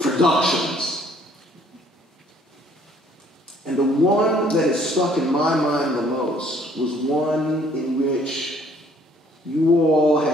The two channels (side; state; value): both; normal; correlation 0.61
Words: And the one that has stuck in my mind the most was one in which you all